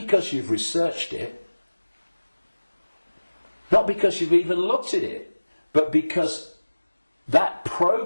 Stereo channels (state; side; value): inverted; both; correlation -1.00